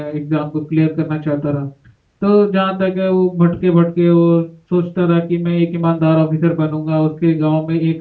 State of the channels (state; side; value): identical; both; correlation 1.00